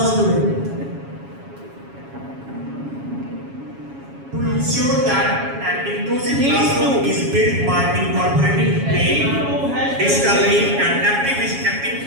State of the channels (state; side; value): late; left; 7.2 ms